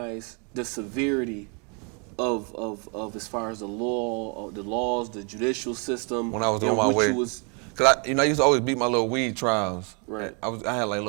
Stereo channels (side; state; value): left; quieter; 35.7 dB